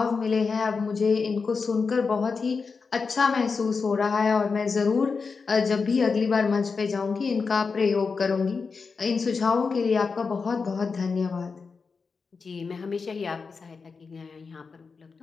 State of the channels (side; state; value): right; quieter; 4.9 dB